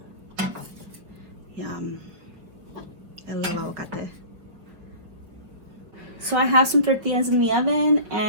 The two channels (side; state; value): left; late; 5.5 ms